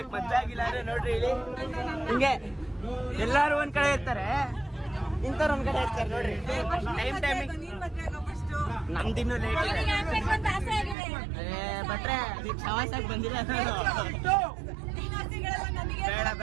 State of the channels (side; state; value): left; drops out; at 11.0 s